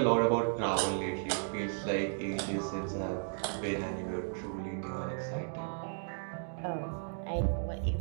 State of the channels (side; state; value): left; silent; digital silence